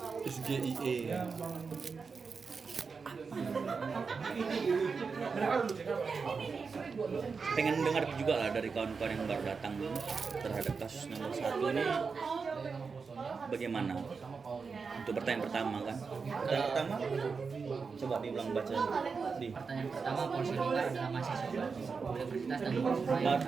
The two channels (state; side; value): quieter; left; 5.1 dB